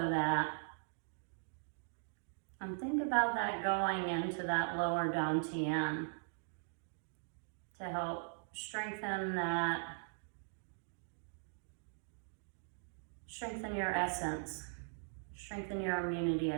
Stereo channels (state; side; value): silent; left; digital silence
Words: that. And think about that going into that lower dantian to help strengthen that, strengthen your essence, strengthen your immunity